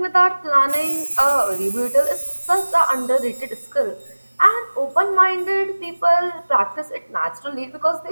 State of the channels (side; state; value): both; inverted; correlation -1.00